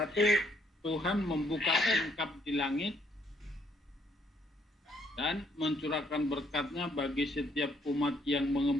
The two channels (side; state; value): both; normal; correlation 0.69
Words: Tuhan membuka tingkap di langit dan mencurahkan berkat-Nya bagi setiap umat yang